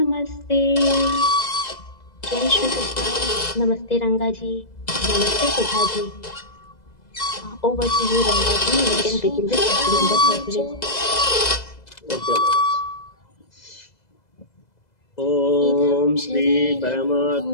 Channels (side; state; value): right; late; 2.0 ms